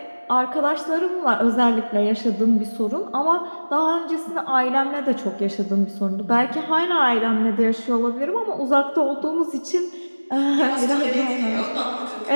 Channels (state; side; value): inverted; both; correlation -1.00